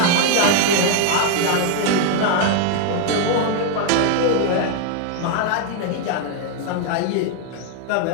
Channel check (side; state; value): both; different; correlation 0.00